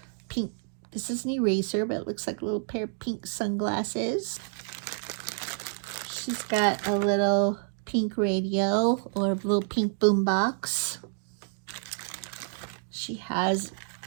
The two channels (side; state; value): left; silent; digital silence